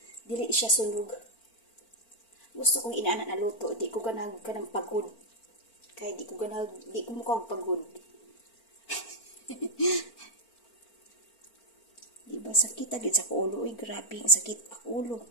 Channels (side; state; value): right; late; 4.4 ms